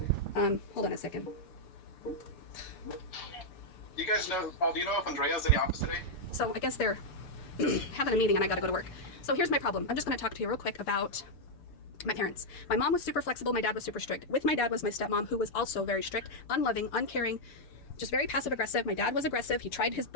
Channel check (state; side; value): late; right; 6.8 ms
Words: Hold on a second. You guys know, Paul, do you know if Andrea's in the office today? So I guess they're having a meeting and I gotta go to work. So here's my problem. I'm just gonna talk to you real quick about my parents. My mom was super flexible, my dad was super strict. With my dad was my stepmom, who was also very strict, unloving, uncaring, just very passive aggressive. My dad was aggressive. He tried his